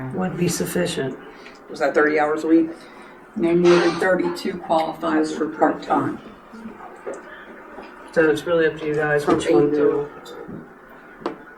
would be sufficient. Was that 30 hours a week? No more than 32 qualifies for part-time. So it's really up to you guys From which one 8 to. to-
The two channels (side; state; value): both; identical; correlation 1.00